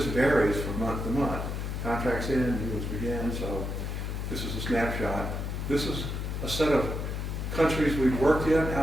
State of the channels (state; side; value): noise; left; hum, 3 dB below the sound